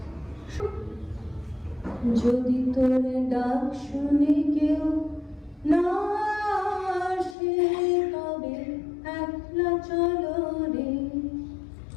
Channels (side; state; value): right; drops out; at 7.4 s